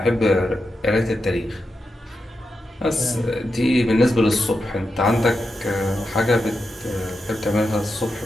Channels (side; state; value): both; normal; correlation 0.88